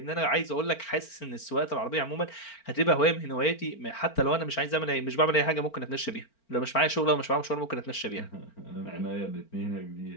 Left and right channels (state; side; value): late; right; 4.4 ms